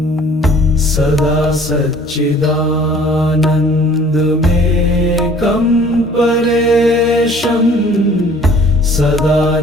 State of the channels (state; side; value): normal; both; correlation 0.53